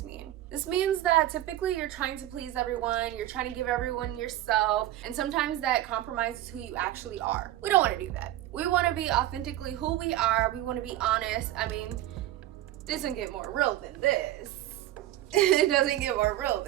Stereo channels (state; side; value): quieter; left; 14.0 dB